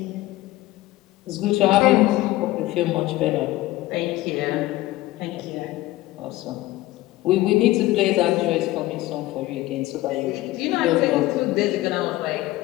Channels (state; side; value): quieter; right; 17.3 dB